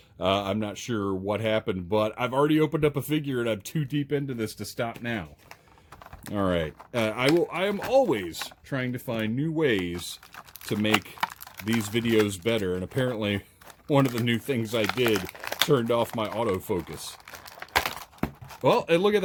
I'm not sure what happened, but I've already opened up a figure, and I'm too deep into this to stop now. All right. I am always trying to find new ways to make these videos better, and apparently one of the new things I did turned off my autofocus. Well, and look at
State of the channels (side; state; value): both; identical; correlation 1.00